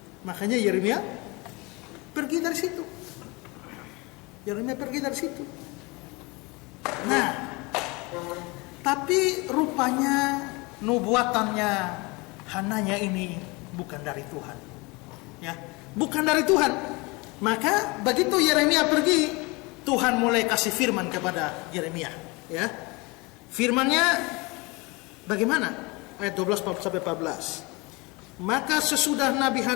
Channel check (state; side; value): quieter; right; 26.1 dB